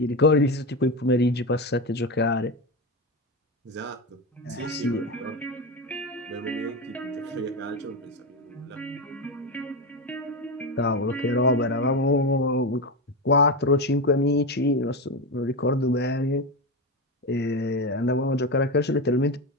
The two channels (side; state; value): both; normal; correlation 0.16